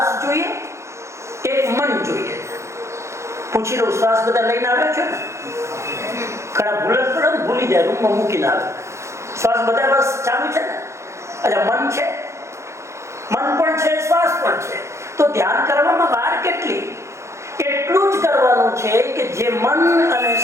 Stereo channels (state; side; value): late; left; 0.14 ms